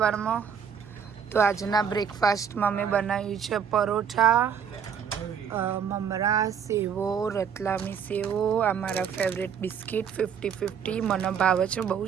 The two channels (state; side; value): quieter; left; 7.6 dB